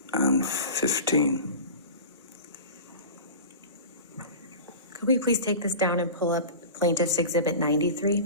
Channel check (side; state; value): both; inverted; correlation -0.33